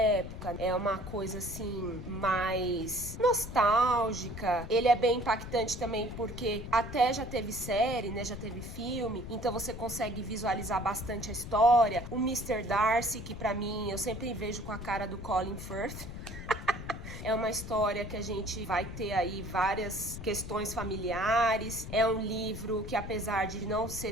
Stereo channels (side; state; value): left; noise; rumble, 9 dB below the sound